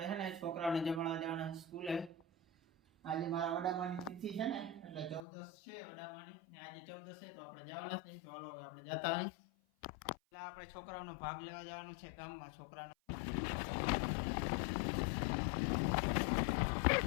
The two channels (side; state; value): right; drops out; at 5.2 s